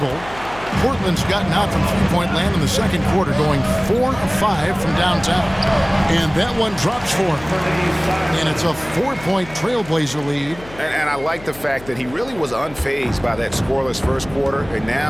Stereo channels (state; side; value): noise; left; hum, 18 dB below the sound